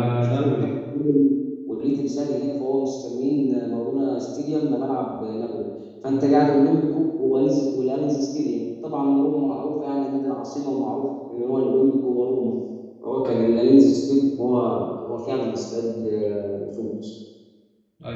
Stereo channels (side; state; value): both; identical; correlation 1.00